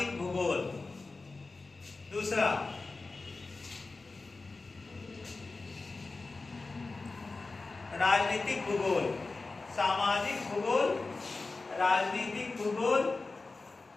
भूगोल। दूसरा राजनीतिक भूगोल। राजनीतिक भूगोल,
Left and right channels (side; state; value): right; quieter; 3.7 dB